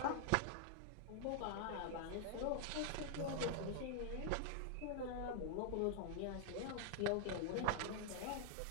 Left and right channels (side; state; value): both; different; correlation -0.01